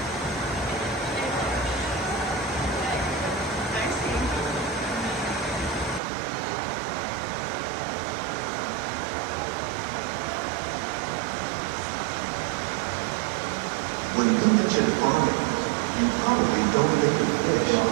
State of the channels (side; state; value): left; drops out; at 6.0 s